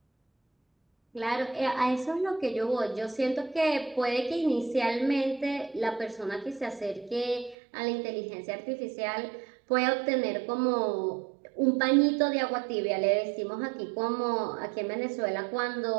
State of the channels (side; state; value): left; drops out; at 7.6 s